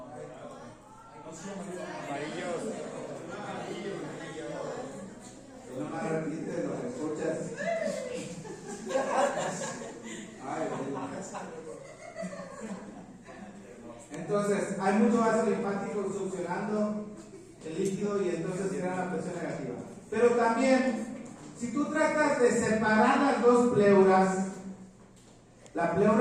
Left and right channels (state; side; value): identical; both; correlation 1.00